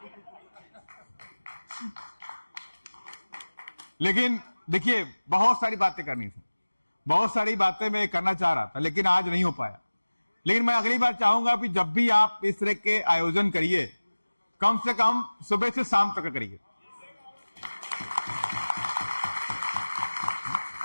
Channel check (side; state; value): both; inverted; correlation -1.00